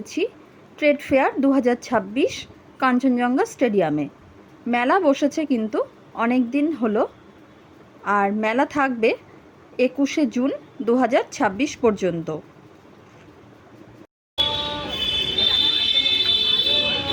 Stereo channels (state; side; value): identical; both; correlation 1.00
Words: ট্রেড ফেয়ার 2026 কাঞ্চনজঙ্ঘা স্টেডিয়ামে। মেলা বসেছে কিন্তু অনেক দিন হলো, আর মেলা থাকবে 21শে জুন 2026 পর্যন্ত।